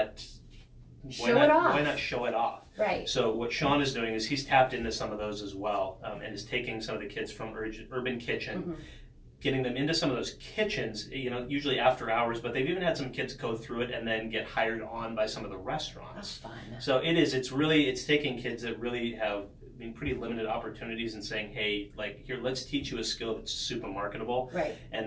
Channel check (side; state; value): both; identical; correlation 1.00